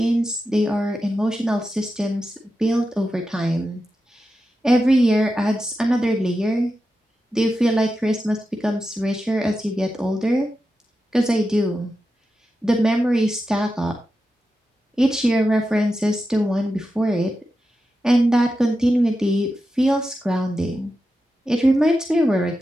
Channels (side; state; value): both; normal; correlation 0.90